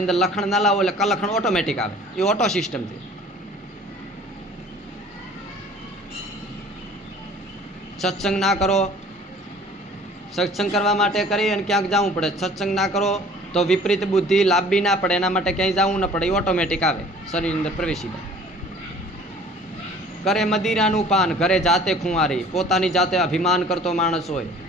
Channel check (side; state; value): both; normal; correlation 0.50